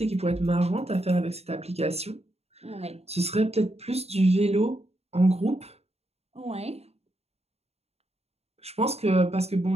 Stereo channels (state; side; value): late; left; 0.30 ms